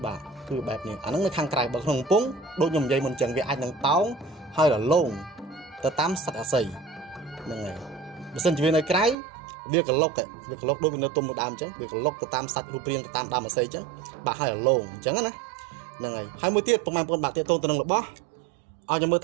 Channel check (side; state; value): left; drops out; at 9.2 s